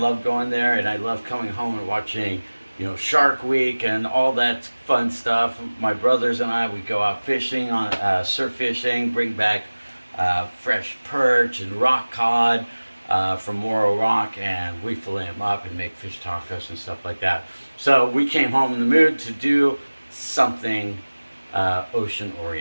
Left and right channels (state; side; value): inverted; both; correlation -1.00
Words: going there, and I love coming home and watching, Shark Week and all that fun stuff. My brothers and I, we go out fishing on surf fishing, bring back fresh perch and rock cod from Morro Rock, and we fillet them up and make fish tacos and stuff like that. So we came home in the mood to do something ocean